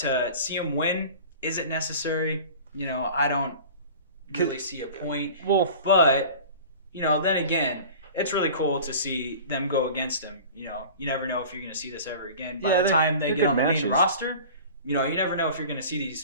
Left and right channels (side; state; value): both; inverted; correlation -0.39